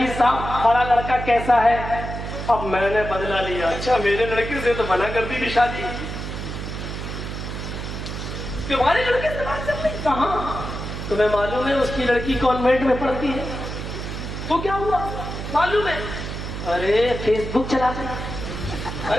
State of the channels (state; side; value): noise; right; hum, 6 dB below the sound